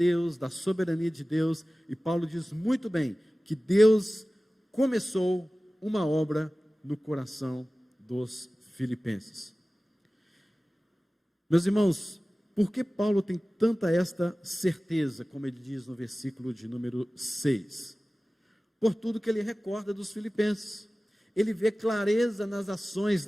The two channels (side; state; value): both; normal; correlation 0.97